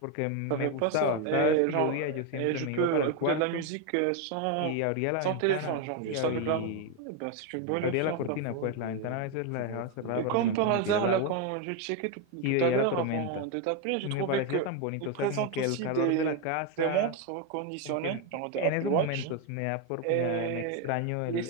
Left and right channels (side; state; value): both; different; correlation 0.02